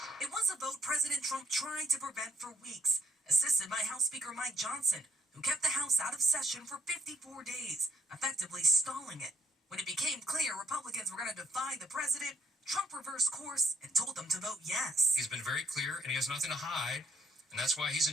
It was a vote President Trump tried to prevent for weeks, assisted by House Speaker Mike Johnson, who kept the House out of session for 54 days, effectively stalling it. When it became clear Republicans were going to defy the president, Trump reversed course and told them to vote yes. He's been very clear, and he has nothing to hide, and that's why he's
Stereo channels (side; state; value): both; normal; correlation 0.65